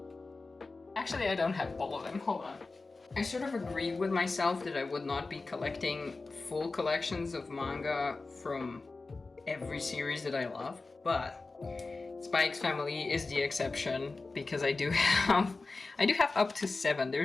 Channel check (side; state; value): right; quieter; 3.7 dB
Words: Actually, I don't have all of them. Hold on. I sort of agreed with myself that I would not be collecting full collections of manga from every series that I love, but Spy X Family is the exception because I do have up to 7.